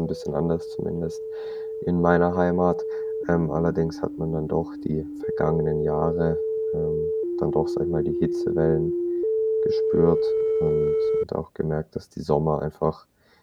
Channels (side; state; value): both; identical; correlation 1.00